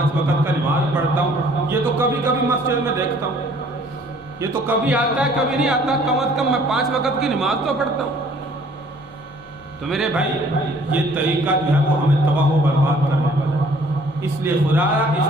وقت کا نماز پڑھتا ہوں، یہ تو کبھی کبھی مسجد میں دیکھتا ہوں، یہ تو کبھی آتا ہے کبھی نہیں آتا، کم از کم میں 5 وقت کی نماز تو پڑھتا ہوں۔ تو میرے بھائی یہ طریقہ جو ہے وہ ہمیں تباہ و برباد کرنے والا ہے، اس لیے خدا اس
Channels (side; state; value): left; noise; hum, 24 dB below the sound